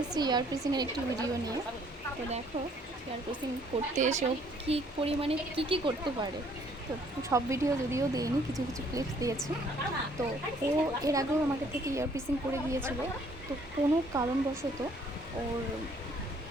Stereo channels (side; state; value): both; normal; correlation 0.62